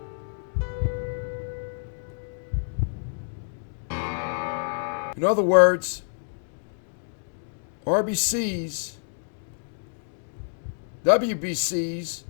In other words, RBCs, WBCs,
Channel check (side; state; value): right; silent; digital silence